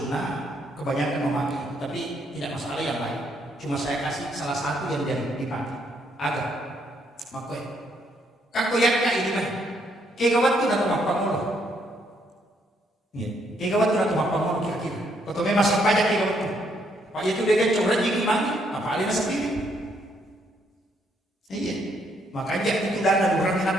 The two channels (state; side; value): normal; both; correlation 0.72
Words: kebanyakan memakai, tapi tidak masalah yang lain. Cuma saya kasih salah satu yang dipakai. Agak makoi. Kakoyak ini mah. Kegawat tu na tumapang mo. Iya, kegawat tu na tumapang mo kira-kira. Kalau memang sampai aja kegawat tu. Pak itu dia curhat jadi mati, apa alih sendiri. Iya. Makanya itu dana orang